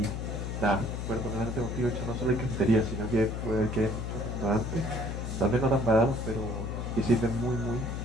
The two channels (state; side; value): noise; left; hum, 4 dB below the sound